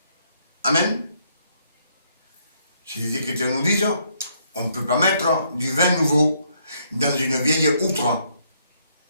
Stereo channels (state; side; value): inverted; both; correlation -0.71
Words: Amen. Si les Écritures nous disent, on ne peut pas mettre du vin nouveau dans une vieille outre.